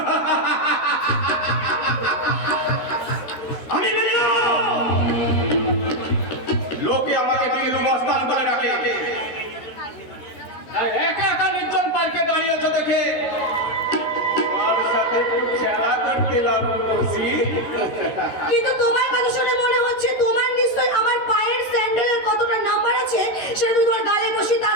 বসি। কিন্তু তোমার কথা শুনে মনে হচ্ছে তোমার নিশ্চয় আমার পায়ের স্যান্ডেলের কতটা নাম্বার আছে সেটা তুমি তোমার গালে বসিয়ে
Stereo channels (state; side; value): late; right; 13 ms